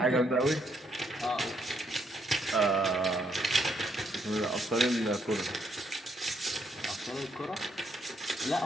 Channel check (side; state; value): both; normal; correlation 0.73